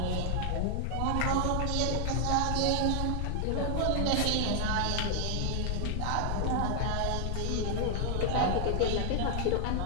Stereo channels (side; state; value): both; different; correlation 0.00